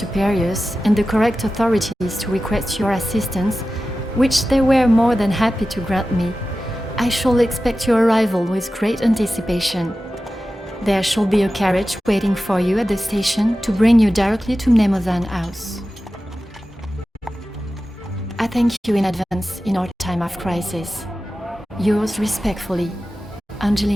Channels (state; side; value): normal; both; correlation 0.94